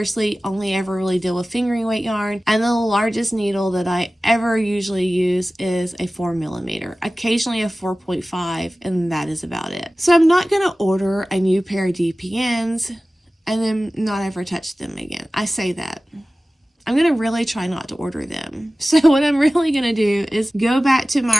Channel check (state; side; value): normal; both; correlation 0.97